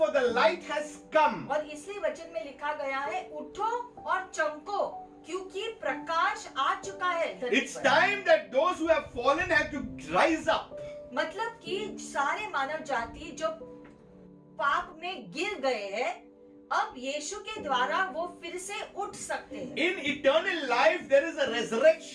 the light has come." और इसलिए वचन में लिखा गया है, उठो और चमको क्योंकि प्रकाश आ चुका है धरती It's पर। time that those who have fallen have to rise up. मतलब कि सारे मानव जाति जो पाप में गिर गए हैं अब यीशु के द्वारा वो फिर से उठ सकते हैं। In eternal life, there is a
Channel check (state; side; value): identical; both; correlation 1.00